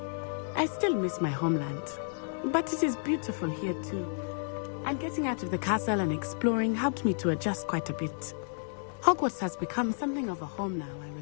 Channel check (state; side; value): silent; right; digital silence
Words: I still miss my homeland, but it is beautiful here too. And getting out of the castle and exploring helped me to adjust quite a bit. Hogwarts has become something of a home now, I